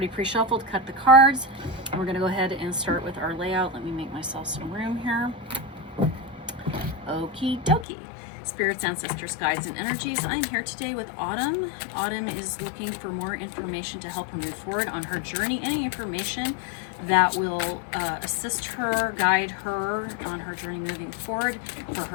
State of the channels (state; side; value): drops out; right; at 7.9 s